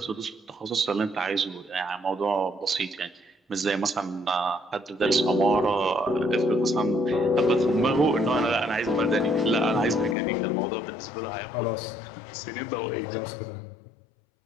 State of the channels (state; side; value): drops out; right; at 10.2 s